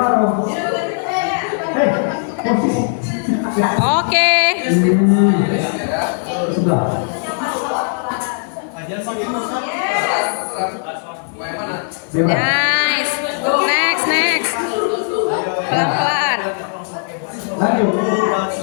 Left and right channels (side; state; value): right; silent; 67 dB below the other